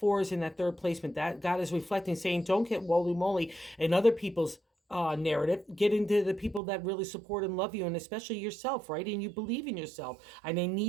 is in that third placement. That God is reflecting, saying, don't get woolly moly in other people's narrative. Get into the people that really support and love you, and especially yourself, right? And you believe in yourself. And I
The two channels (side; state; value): left; drops out; at 6.6 s